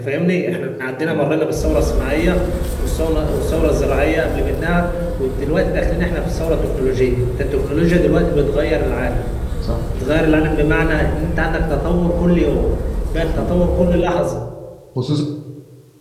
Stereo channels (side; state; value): both; identical; correlation 1.00